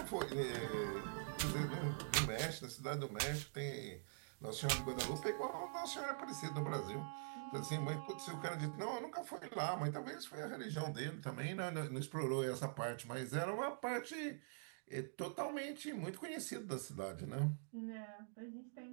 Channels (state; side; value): silent; left; digital silence